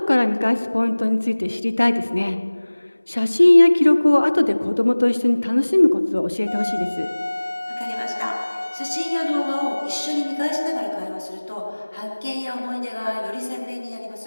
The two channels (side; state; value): both; inverted; correlation -1.00